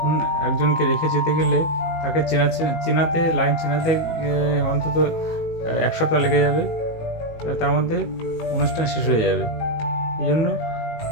একজনকে রেখে যেতে গেলে তাকে লাইন চেনাতে অন্তত 1 সপ্তাহ লেগে যাবে, তার মধ্যে অনুষ্ঠান শেষ হয়ে যাবে। এই জন্য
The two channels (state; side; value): late; right; 19 ms